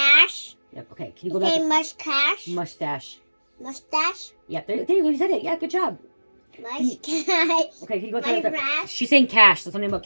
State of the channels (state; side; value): inverted; both; correlation -1.00